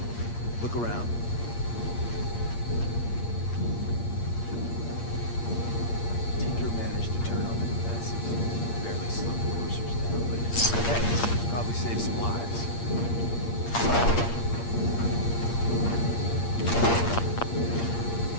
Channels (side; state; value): right; late; 8.6 ms